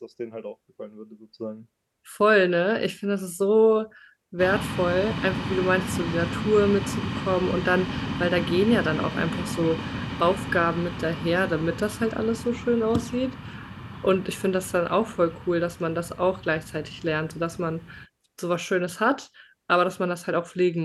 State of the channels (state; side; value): identical; both; correlation 1.00